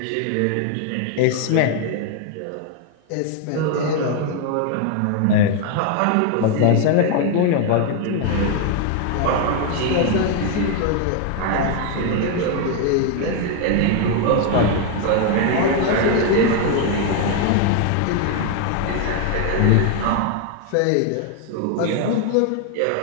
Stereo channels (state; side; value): different; both; correlation 0.01